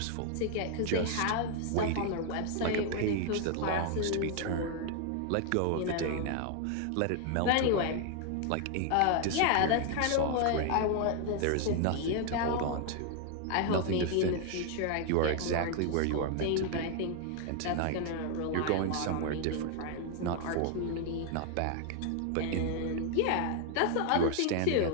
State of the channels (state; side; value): different; both; correlation 0.00